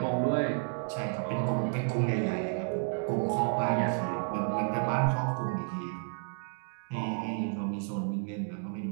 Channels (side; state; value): left; silent; 57 dB below the other